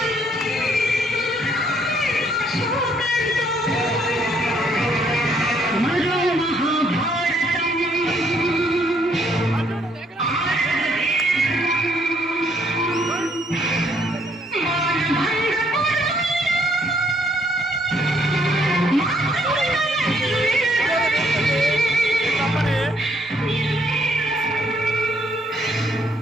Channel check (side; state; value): both; normal; correlation 0.68